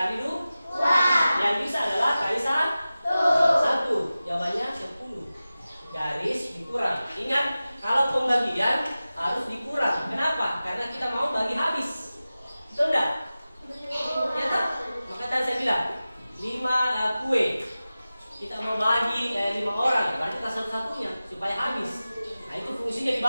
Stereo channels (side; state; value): both; inverted; correlation -0.95